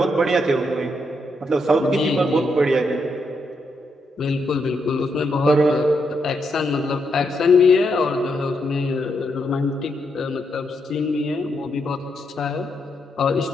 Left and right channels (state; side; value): normal; both; correlation 0.80